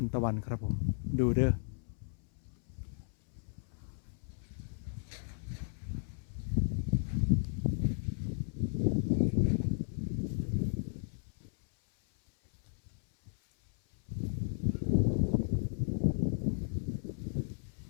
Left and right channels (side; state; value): right; silent; 55 dB below the other